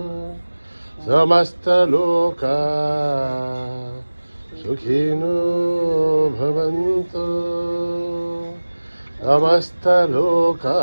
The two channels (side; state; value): both; inverted; correlation -1.00